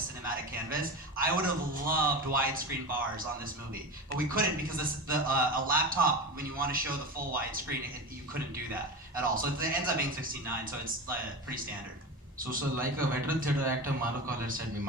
canvas. I would have loved widescreen bars on this movie, but we couldn't because a laptop, when you want to show the full widescreen, you couldn't do that at all. So it ends up being 16:9, so it's pretty standard. So like a veteran theatre actor,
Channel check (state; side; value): normal; both; correlation 0.26